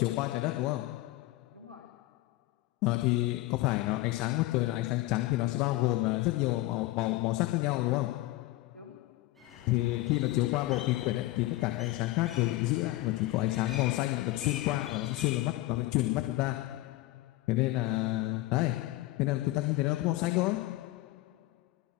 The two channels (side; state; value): right; quieter; 18.0 dB